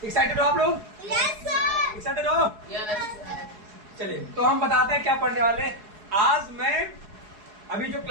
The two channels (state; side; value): late; left; 4.7 ms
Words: एक्साइटेड हो आप लोग? Yes sir. एक्साइटेड हो? चलिए, तो हम बताते हैं क्या पढ़ने वाले हैं। आज मैं अभी जो